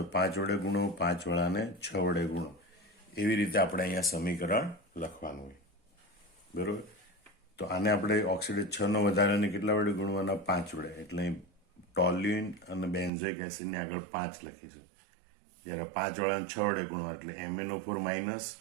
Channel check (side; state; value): left; drops out; at 13.1 s